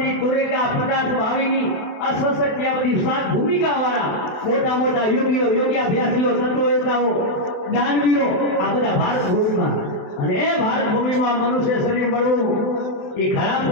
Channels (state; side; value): late; right; 28 ms